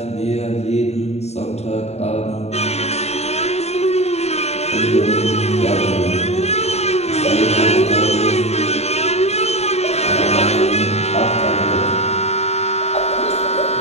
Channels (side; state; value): right; late; 0.31 ms